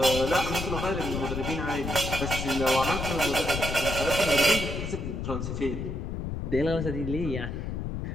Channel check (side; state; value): left; noise; rumble, 4 dB below the sound